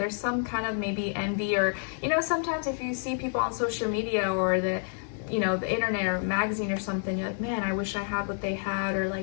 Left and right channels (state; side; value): silent; right; 57 dB below the other